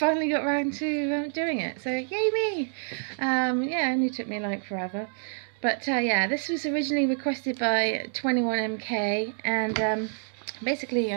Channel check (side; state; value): left; silent; 60 dB below the other